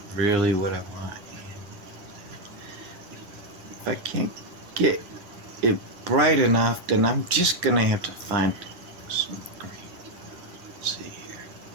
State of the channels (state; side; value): late; left; 11 ms